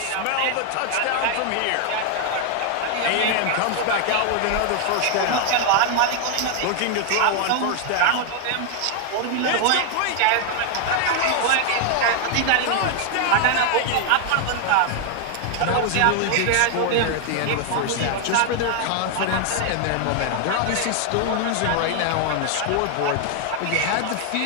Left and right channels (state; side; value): different; both; correlation 0.00